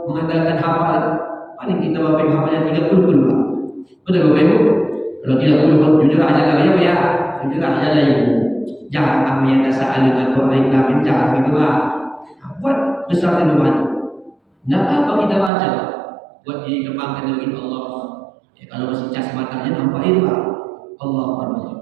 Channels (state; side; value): drops out; left; at 15.5 s